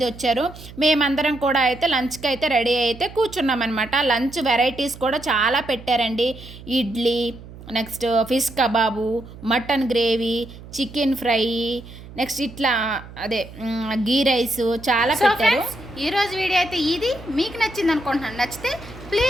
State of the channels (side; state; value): right; noise; hum, 17 dB below the sound